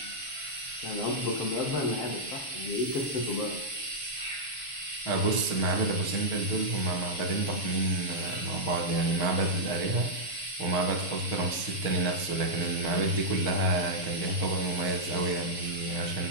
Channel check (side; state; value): right; late; 6.5 ms